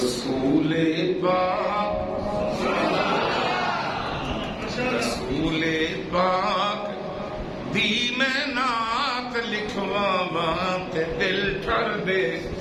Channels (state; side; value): identical; both; correlation 1.00